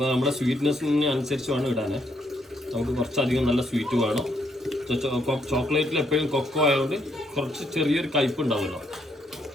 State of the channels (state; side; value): normal; both; correlation 0.73